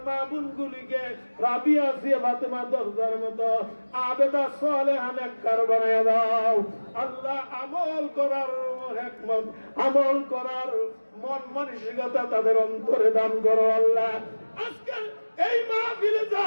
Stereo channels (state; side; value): inverted; both; correlation -1.00